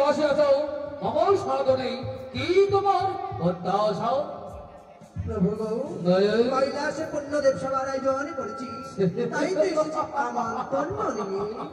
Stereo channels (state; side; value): identical; both; correlation 1.00